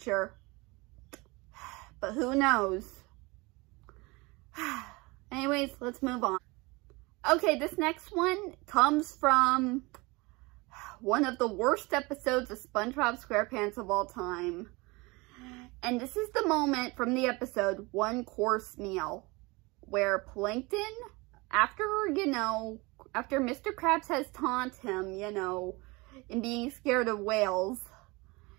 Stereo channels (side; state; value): left; quieter; 24.9 dB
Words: But who knows? Anyways, let's move on. Okay, this next one comes from one of the worst episodes of SpongeBob SquarePants of all time. And this is the moment from the episode, One Course Meal, where Plankton, after Mr. Krabs has taunted him, in being scared of whales,